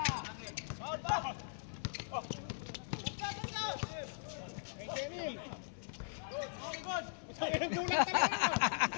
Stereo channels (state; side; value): silent; right; 51 dB below the other